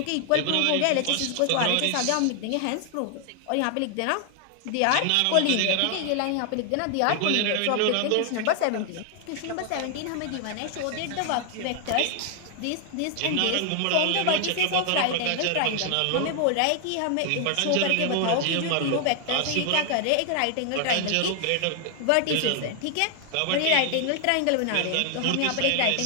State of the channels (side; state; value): both; different; correlation 0.00